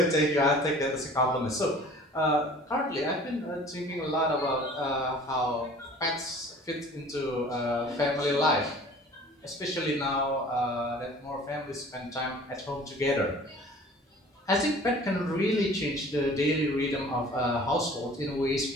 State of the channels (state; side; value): normal; both; correlation 0.47